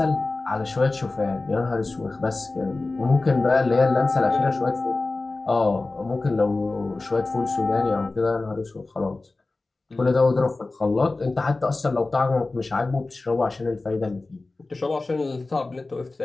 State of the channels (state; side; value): quieter; right; 3.3 dB